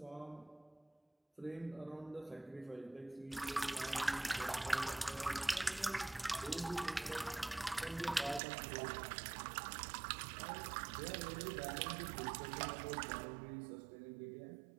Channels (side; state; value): left; drops out; at 8.4 s